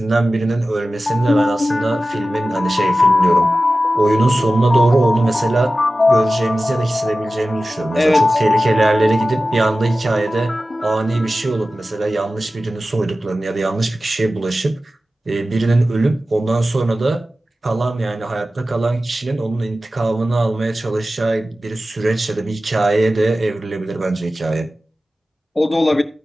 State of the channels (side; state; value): both; normal; correlation 0.95